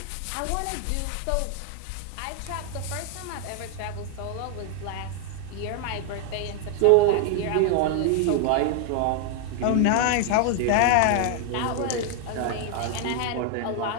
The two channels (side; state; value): both; different; correlation 0.01